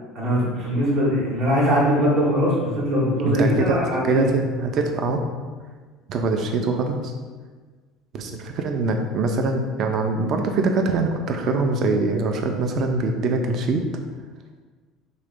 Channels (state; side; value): normal; both; correlation 0.39